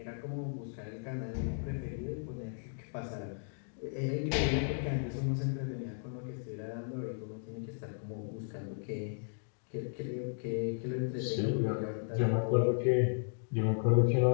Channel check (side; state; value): right; silent; digital silence